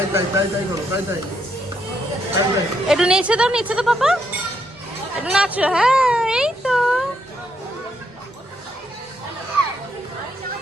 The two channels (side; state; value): both; normal; correlation 0.76